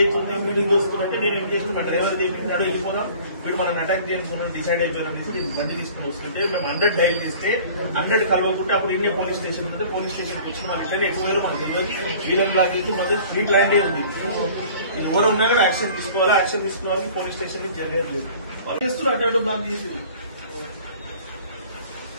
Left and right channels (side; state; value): both; inverted; correlation -0.47